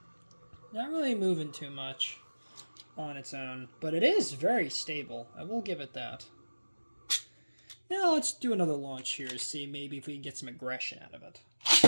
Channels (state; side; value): inverted; both; correlation -1.00